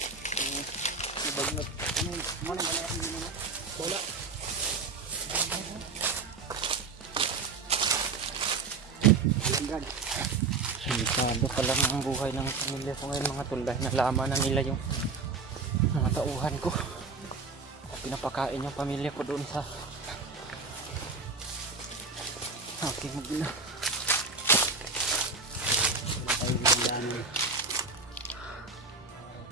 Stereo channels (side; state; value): left; quieter; 4.2 dB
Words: Nabagnot. Ano na? Bola. Delikado pala ang buhay ng pamilya ko ngayon mga tol, dahil nalaman na nila yung mga tauhan ko. Pinapakain yung pamilya ko doon sa aking magina.